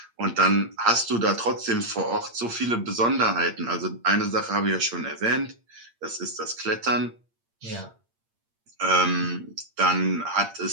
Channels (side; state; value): left; late; 8.7 ms